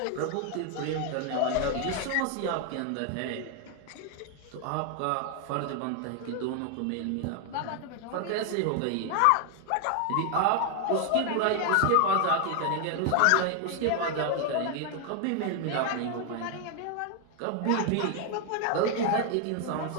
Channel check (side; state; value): both; different; correlation 0.00